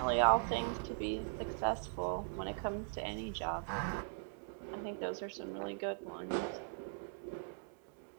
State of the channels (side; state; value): left; silent; digital silence